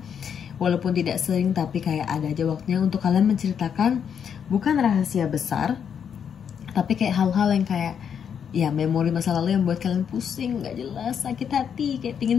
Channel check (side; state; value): right; quieter; 7.7 dB